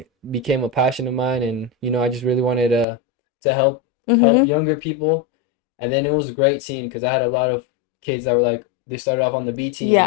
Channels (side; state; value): right; drops out; at 2.9 s